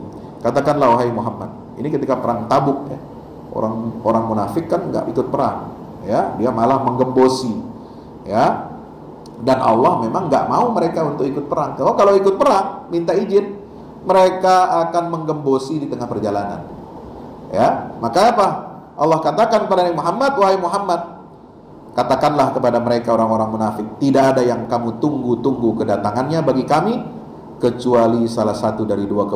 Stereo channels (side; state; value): both; identical; correlation 1.00